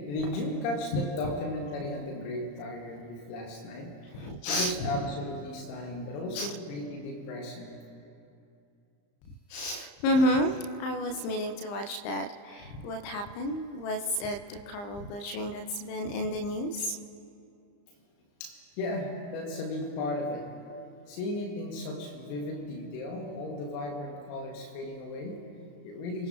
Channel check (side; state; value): right; late; 34 ms